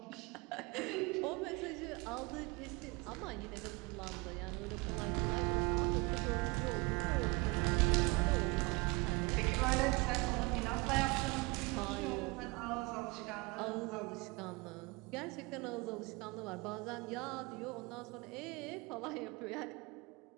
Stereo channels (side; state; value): left; quieter; 26.2 dB